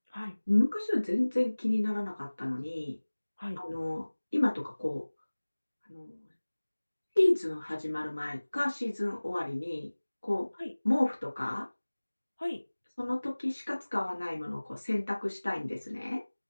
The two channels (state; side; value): inverted; both; correlation -1.00